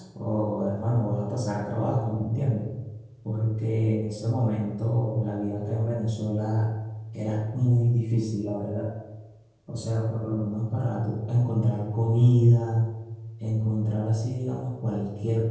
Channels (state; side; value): identical; both; correlation 1.00